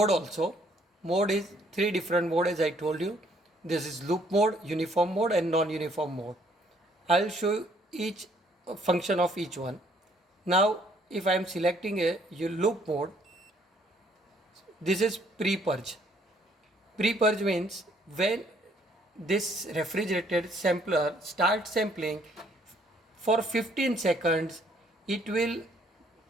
also. Mode is three different mode, as I told you. This is loop mode, uniform mode and non-uniform mode. I'll show you each function of each one. Now if I am selecting a loop mode, this is pre-purge. Pre-purge means when this refrigerated sampler starts sampling, for 15 seconds it will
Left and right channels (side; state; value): both; normal; correlation 0.64